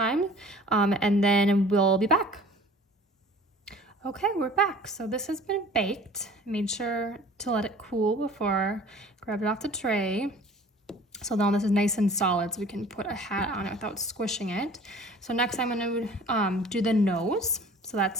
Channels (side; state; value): both; normal; correlation 0.47